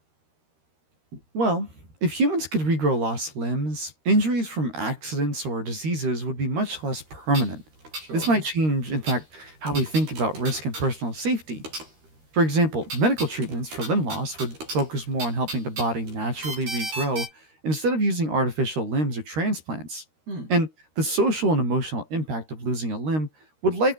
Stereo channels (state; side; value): late; left; 13 ms